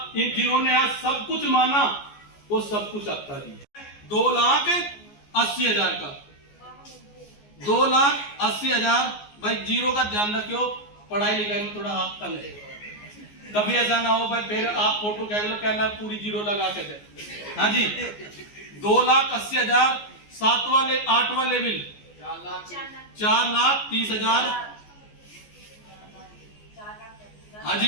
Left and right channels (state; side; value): late; right; 14 ms